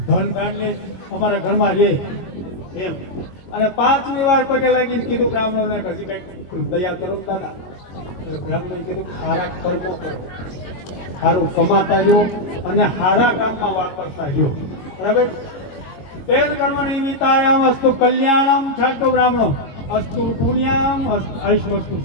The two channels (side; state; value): right; late; 22 ms